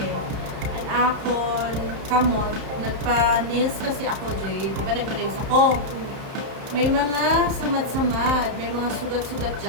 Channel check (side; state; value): left; late; 31 ms